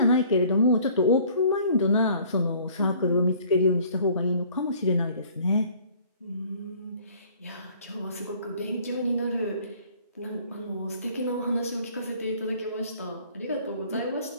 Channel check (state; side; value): inverted; both; correlation -0.54